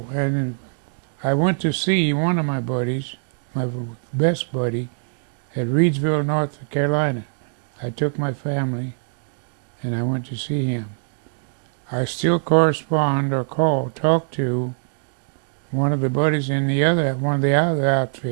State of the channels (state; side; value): silent; left; digital silence